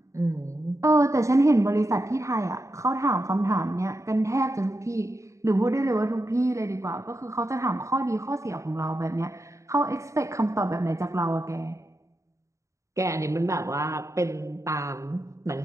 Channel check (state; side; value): late; left; 0.15 ms